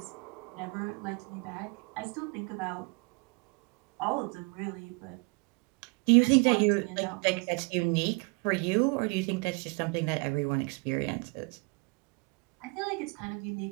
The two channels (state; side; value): quieter; left; 31.7 dB